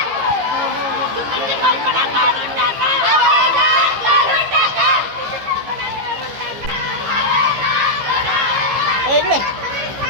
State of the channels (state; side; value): late; left; 15 ms